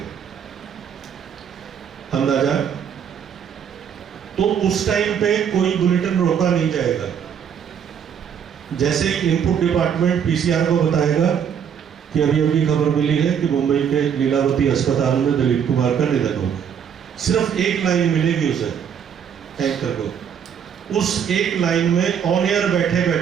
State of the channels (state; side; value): quieter; left; 8.0 dB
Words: अंदाजा, तो उस टाइम पे कोई बुलेटिन रोका नहीं जाएगा। जैसे ही इनपुट डिपार्टमेंट पीसीआर को बताएगा कि अभी अभी खबर मिली है कि मुंबई के लीलावती अस्पताल में दिलीप कुमार का निधन हो गया, सिर्फ एक लाइन मिलेगी उसे, एंकर को। उस एक लाइन में ऑन एयर बैठे